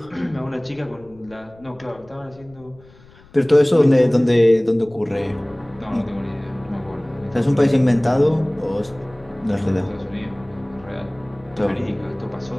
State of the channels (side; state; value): left; noise; rumble, 26 dB below the sound